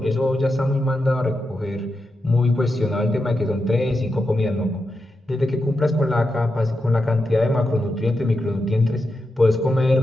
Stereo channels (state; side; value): normal; both; correlation 0.87